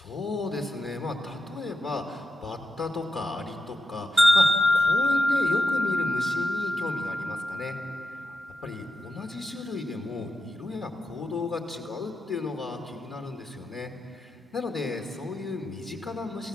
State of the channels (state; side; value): normal; both; correlation 0.87